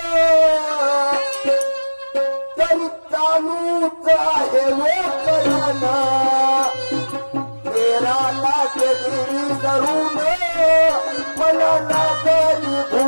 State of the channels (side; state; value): both; inverted; correlation -1.00